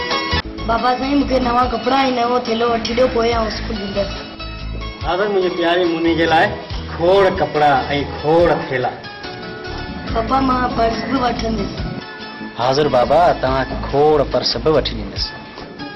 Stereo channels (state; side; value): identical; both; correlation 1.00